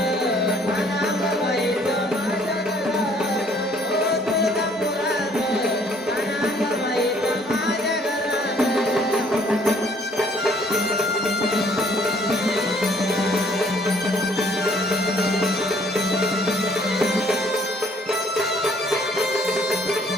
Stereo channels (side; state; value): both; normal; correlation 0.61